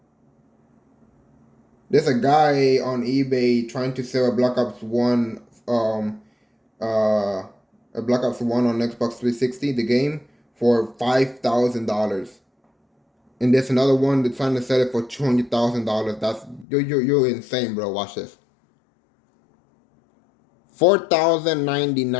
There's a guy on eBay trying to sell a Black Ops One, a Black Ops One on Xbox 360, the game, for $5,000. And there's another one that's trying to sell it for $200,000. That's you're insane, bro. Watch this.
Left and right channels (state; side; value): drops out; right; at 16.7 s